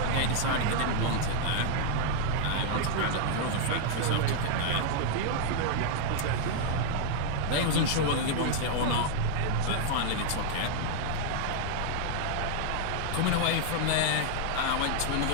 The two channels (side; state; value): both; different; correlation 0.00